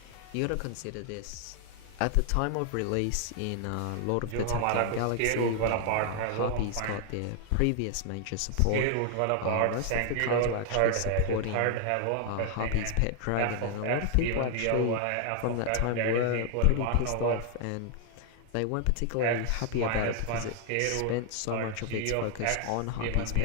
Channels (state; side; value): different; both; correlation 0.00